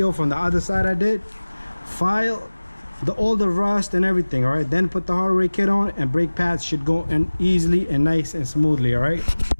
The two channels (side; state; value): both; inverted; correlation -1.00